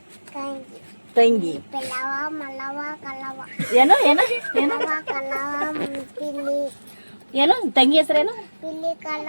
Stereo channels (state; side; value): inverted; both; correlation -1.00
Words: ತಂಗಿ ತಂಗಿ. ಪೆಲವ ಮಲವ ಕಲವ ಏನು ಏನು ಏನು ಮಲವ ಕಲವ ಪಿಲಿ ಏನು ತಂಗಿ ಹೆಸರೇನು? ಪಿಲಿ